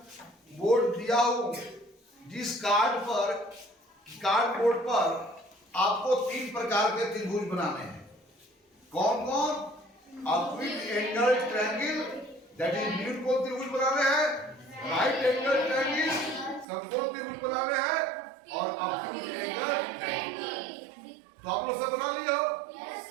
बोर्ड दिया हूं, जिस कार्ड बोर्ड पर आपको 3 प्रकार के त्रिभुज बनाने हैं। कौन कौन? Acute angle triangle, that is न्यूनकोण त्रिभुज बनाने हैं, राइट एंगल ट्रायंगल समकोण त्रिभुज बनाने हैं, और एक्यूट एंगल ट्रायंगल। तो आप लोग सब बना लिए हो?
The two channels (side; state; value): left; drops out; at 16.7 s